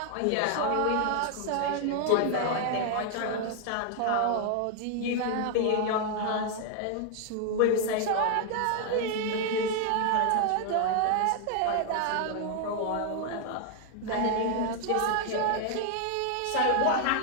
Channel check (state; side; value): different; both; correlation 0.00